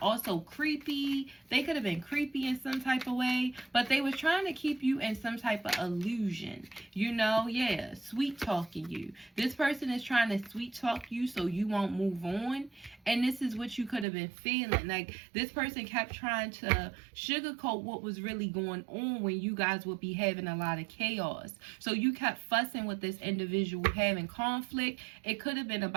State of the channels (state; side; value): drops out; left; at 14.1 s